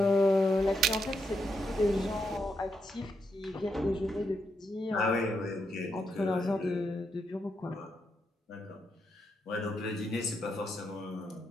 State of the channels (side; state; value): both; normal; correlation 0.81